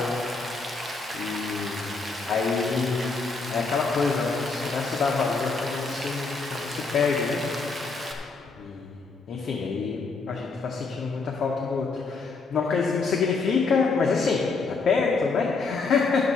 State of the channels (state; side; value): quieter; right; 4.1 dB